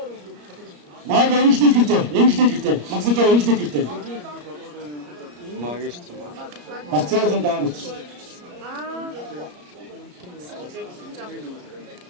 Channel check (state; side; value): late; left; 34 ms